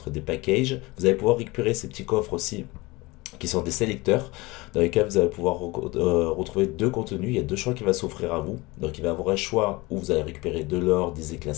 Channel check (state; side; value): quieter; right; 22.6 dB